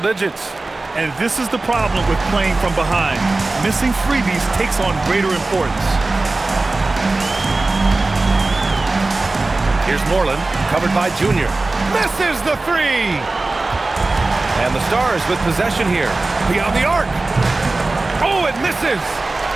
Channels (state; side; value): quieter; left; 3.2 dB